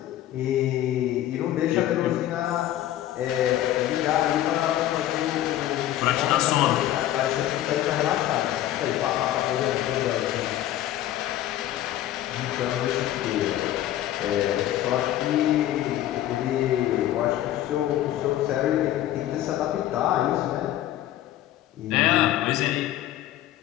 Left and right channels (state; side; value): quieter; right; 13.1 dB